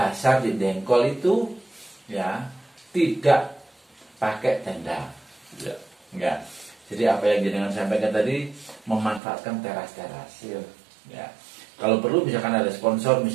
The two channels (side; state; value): left; drops out; at 9.2 s